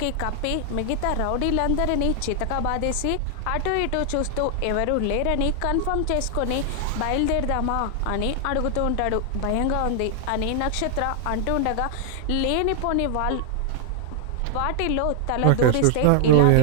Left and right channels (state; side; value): different; both; correlation 0.00